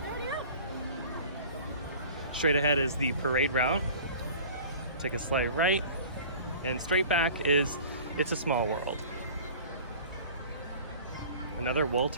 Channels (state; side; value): inverted; both; correlation -0.43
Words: Straight ahead is the parade route. Take a slight right, and straight back is It's a Small World. Another Walt